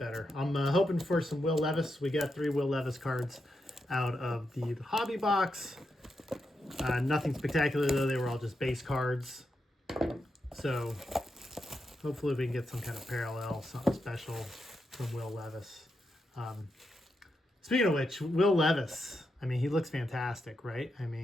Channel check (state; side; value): normal; both; correlation 0.85